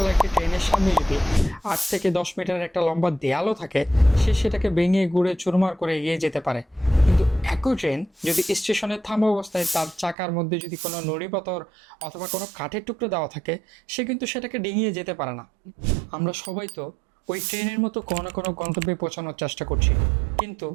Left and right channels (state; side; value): drops out; left; at 10.2 s